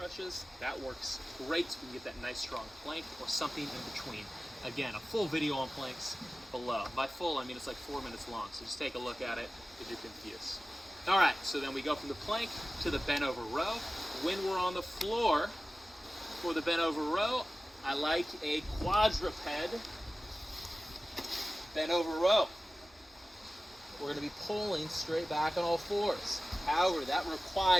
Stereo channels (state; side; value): normal; both; correlation 0.96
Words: that works great. So we can get that nice strong plank or something in between. Again, a full video on planks below. By full, I mean it's like 4 minutes long, so just take a look at it if you're confused. All right, so then we go from the plank to the bent over row. When we're on the floor for the bent over row, I like a quadruped bent over row. We're gonna be pulling straight back on all fours. However, that